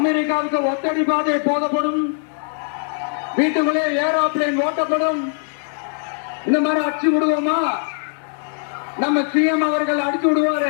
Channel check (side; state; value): right; silent; 56 dB below the other